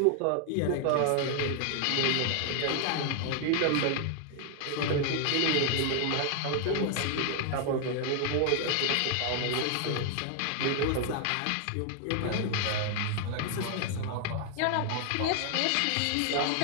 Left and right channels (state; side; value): different; both; correlation 0.00